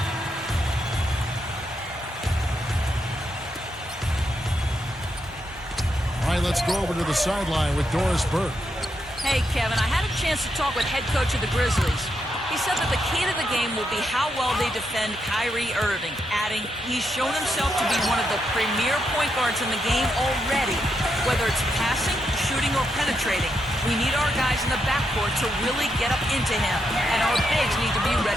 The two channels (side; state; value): both; normal; correlation 0.82